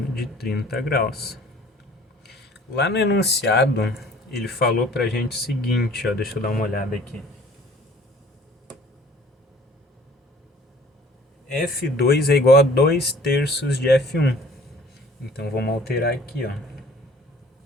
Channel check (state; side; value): normal; both; correlation 0.52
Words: de 30 graus. Lá no enunciado, ele falou pra gente o seguinte, ó, deixa eu dar uma olhada aqui. F2 é igual a 2/3 de F1. Então vamos alterar aqui, ó.